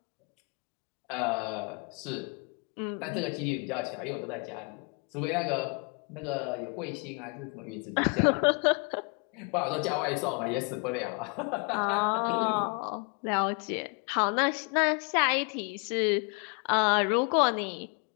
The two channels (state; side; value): quieter; right; 35.1 dB